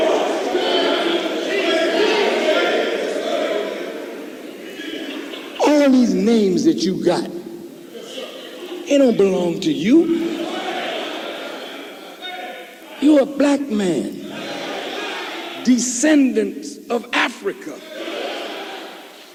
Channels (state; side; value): identical; both; correlation 1.00